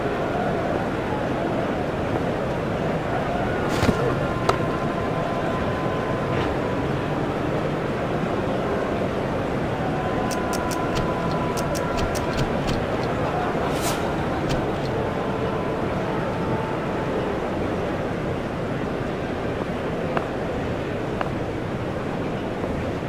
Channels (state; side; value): identical; both; correlation 1.00